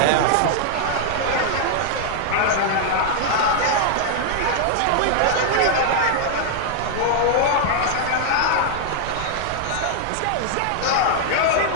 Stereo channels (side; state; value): both; different; correlation 0.00